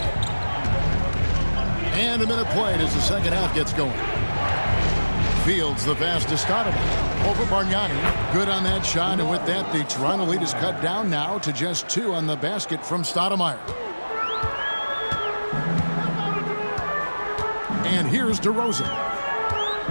And a minute played as the second half gets going. Fields, the pass to Stoudemire. Over Bargnani. Good on that shot, and with that, the Toronto lead is cut down now to just 2 on the basket from Stoudemire. And here's DeRozan.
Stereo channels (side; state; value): both; inverted; correlation -1.00